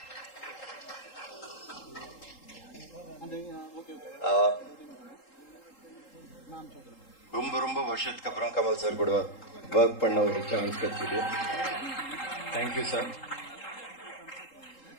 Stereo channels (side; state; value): right; late; 3.8 ms